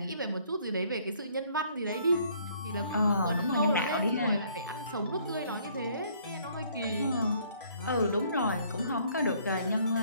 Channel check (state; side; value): inverted; both; correlation -0.62